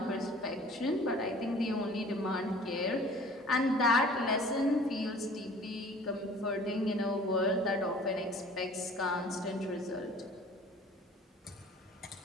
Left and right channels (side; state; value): both; normal; correlation 0.48